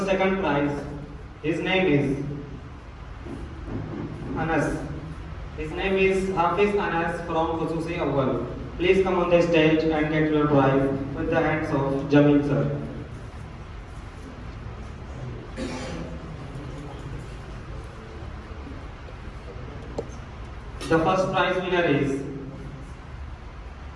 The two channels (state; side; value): identical; both; correlation 1.00